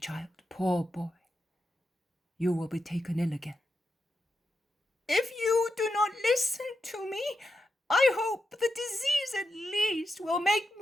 poor boy. You will be taken ill again." "If you do not listen to me, I hope the disease at least will make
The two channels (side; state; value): both; normal; correlation 0.86